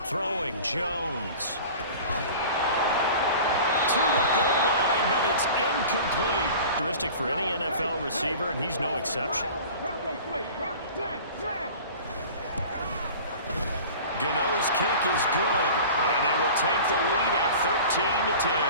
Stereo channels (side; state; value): both; inverted; correlation -0.40